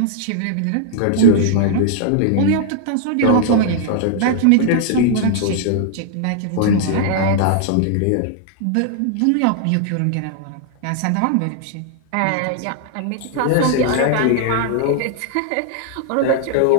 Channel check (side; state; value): both; different; correlation 0.00